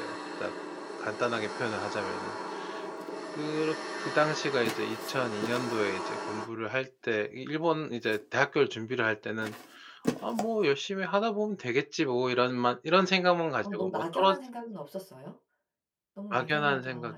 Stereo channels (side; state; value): both; identical; correlation 1.00